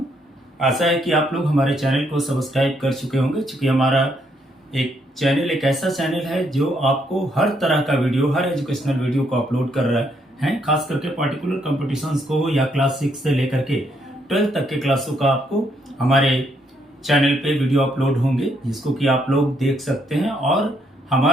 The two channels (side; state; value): both; normal; correlation 0.74